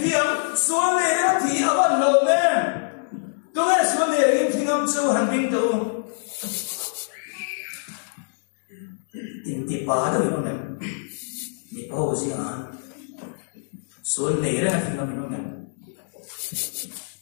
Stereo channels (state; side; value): silent; right; 62 dB below the other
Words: thiam suan nei le thi awan lo me tu e suan nei in thingam chu han bing to in ti pa da no me ni pa ho si an suan nei le thingam no me